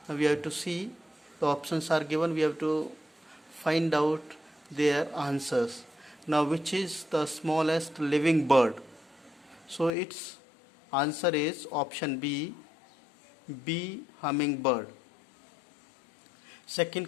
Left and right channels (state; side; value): drops out; right; at 9.9 s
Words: Now we have to see the options are given. We have to find out their answers. Now which is the smallest living bird? So its answer is option B, bee hummingbird. Second